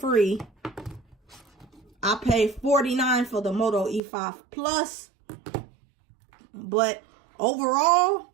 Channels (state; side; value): drops out; left; at 4.0 s